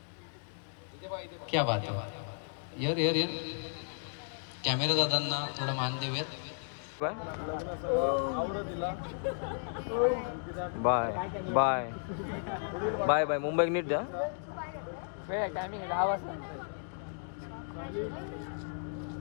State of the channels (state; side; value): silent; right; digital silence